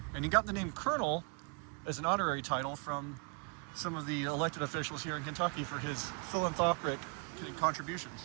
And he got the name Colonel as an honorary title from some of the elected officials here in Kentucky for his philanthropic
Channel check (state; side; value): quieter; left; 33.7 dB